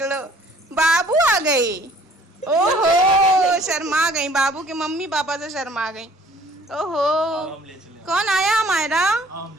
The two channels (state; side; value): normal; both; correlation 0.56